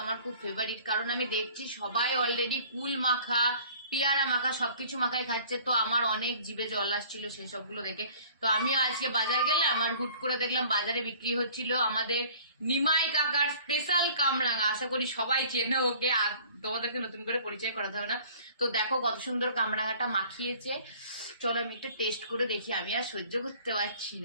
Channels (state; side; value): inverted; both; correlation -0.50